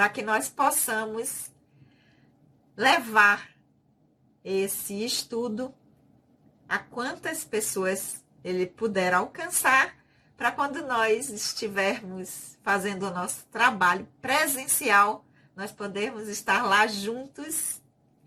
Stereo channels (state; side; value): identical; both; correlation 1.00